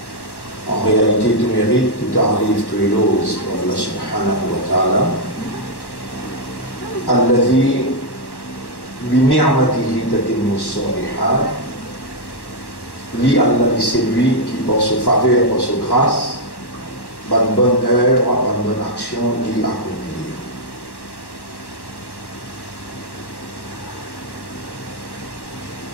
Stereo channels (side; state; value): right; late; 1.1 ms